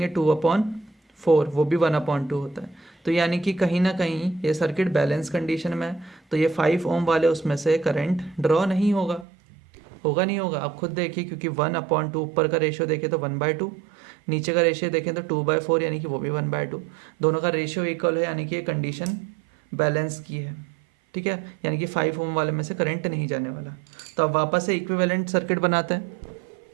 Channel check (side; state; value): left; drops out; at 9.2 s